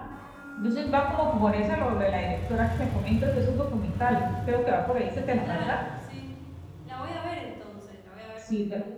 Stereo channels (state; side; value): identical; both; correlation 1.00